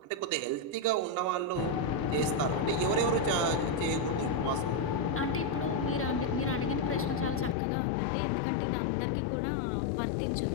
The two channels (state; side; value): drops out; right; at 7.6 s